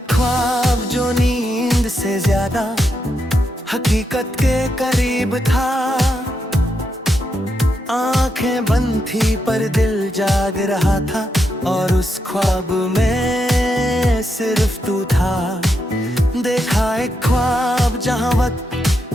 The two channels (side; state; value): both; normal; correlation 0.83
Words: ख्वाब जो नींद से ज्यादा हकीकत के करीब था। आंखें बंद थी पर दिल जाग रहा था, और उस ख्वाब में सिर्फ तू था। देखा एक ख्वाब जहां वक्त